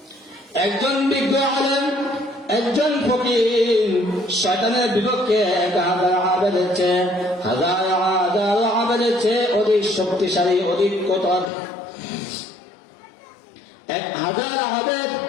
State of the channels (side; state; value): right; drops out; at 11.5 s